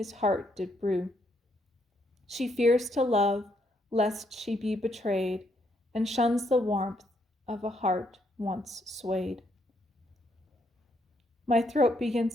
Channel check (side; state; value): both; normal; correlation 0.74